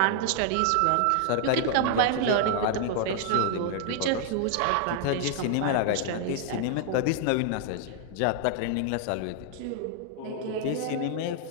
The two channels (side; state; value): both; different; correlation 0.00